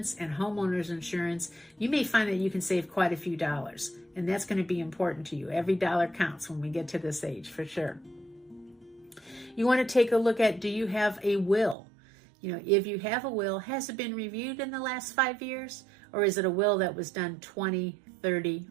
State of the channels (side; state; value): left; drops out; at 11.8 s